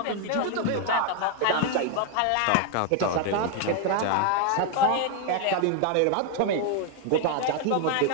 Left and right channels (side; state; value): both; different; correlation 0.01